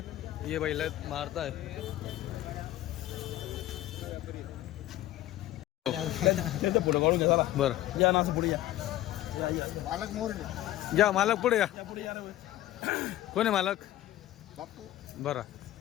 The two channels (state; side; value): quieter; right; 14.5 dB